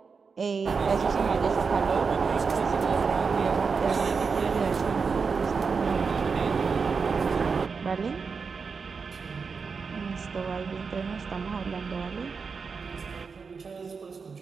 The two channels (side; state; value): left; quieter; 5.2 dB